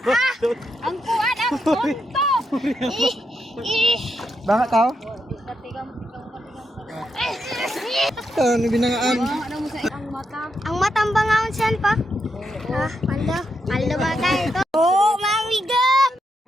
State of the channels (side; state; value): both; normal; correlation 0.82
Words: Ang kuan ang tonto. Baka tao? Katigam. Ito, binangaan. Ano mo sa ang mata? Ang matang bangaon siyan pa. Ah, paldo ba tayo ito? Oh, mamiga!